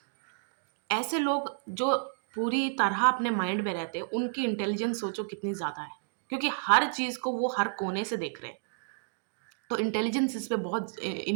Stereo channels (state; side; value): silent; left; digital silence